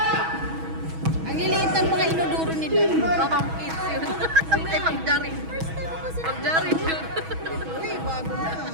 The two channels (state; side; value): late; left; 6.2 ms